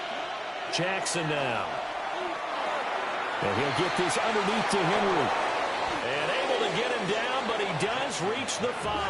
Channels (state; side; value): identical; both; correlation 1.00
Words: Jackson now. And he'll get this underneath to Henry. And able to get him down, but he does reach the